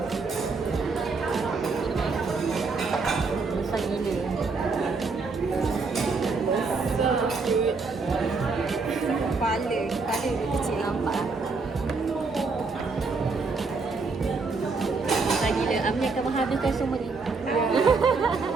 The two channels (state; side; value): quieter; left; 4.2 dB